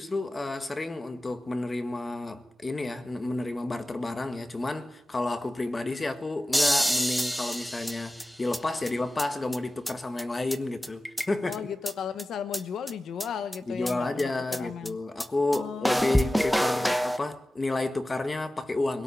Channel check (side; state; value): both; normal; correlation 0.95